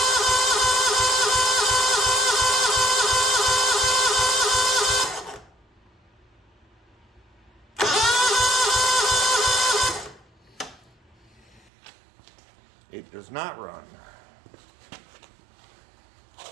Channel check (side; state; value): left; drops out; at 11.7 s